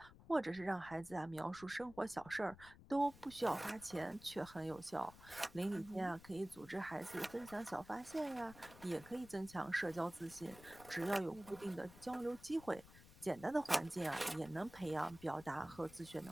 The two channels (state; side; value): noise; left; rumble, 19 dB below the sound